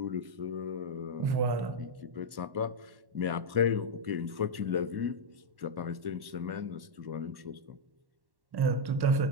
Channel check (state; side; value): late; left; 1.1 ms